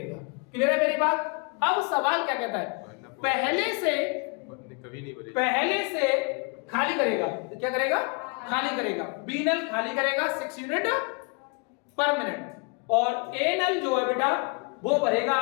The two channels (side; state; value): right; quieter; 34.4 dB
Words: क्लियर है मेरी बात? अब सवाल क्या कहता है, पहले से खाली करेगा, क्या करेगा? खाली करेगा। बी नल खाली करेगा 6 यूनिट पर मिनट, और ए नल जो है बेटा वो भरेगा